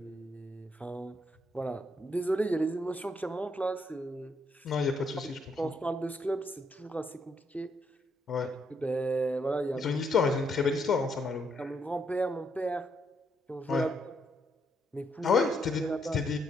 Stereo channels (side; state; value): both; normal; correlation 0.75